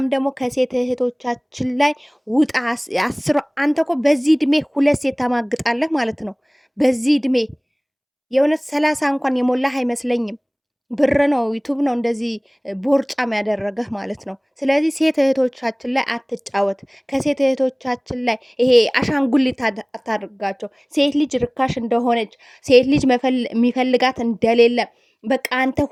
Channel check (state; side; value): identical; both; correlation 1.00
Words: ደግሞ ከሴት እህቶቻችን ላይ ውጣ። አንተ እኮ በዚህ እድሜ 2 ሴት ታማግጣለህ ማለት ነው። በዚህ እድሜ የእውነት 30 እንኳን የሞላህ አይመስለኝም። ብር ነው ዩቱብ ነው እንደዚህ ቦርጫም ያደረገህ ማለት ነው። ስለዚህ ሴት እህቶቻችን ላይ አትጫወት። ከሴት እህቶቻችን ላይ ይሄ አሻንጉሊት አታድርጋቸው። ሴት ልጅ ርካሽ እንደሆነች፣ ሴት ልጅ የሚፈልጋት እንደሌለ፣ በቃ አንተ